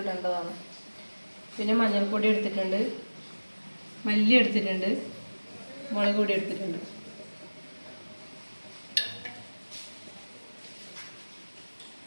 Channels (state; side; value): inverted; both; correlation -1.00